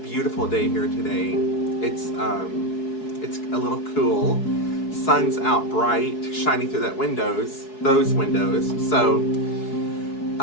day here today. It's a little cool. Sun's out bright, shining through those windows. So,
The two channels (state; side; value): late; right; 4.7 ms